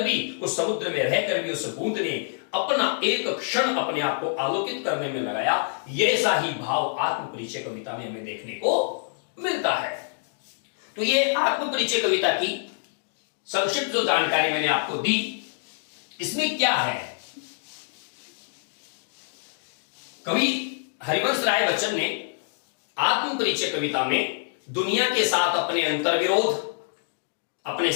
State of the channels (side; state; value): right; silent; digital silence